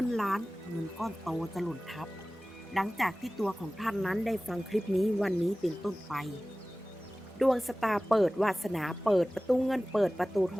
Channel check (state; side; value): normal; both; correlation 0.97